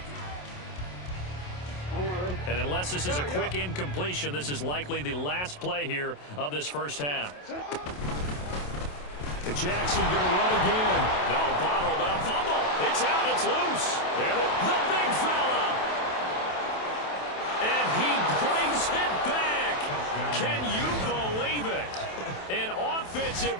And unless this is a quick incompletion, this is likely the last play here of this first half. Jackson going to run again. No, bottled up. Fumble. It's out. It's loose. And the big fella. And he brings it back. Can you believe it? An offensive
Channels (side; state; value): right; late; 27 ms